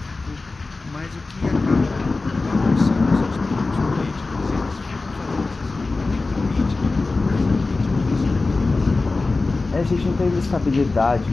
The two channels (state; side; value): quieter; right; 3.6 dB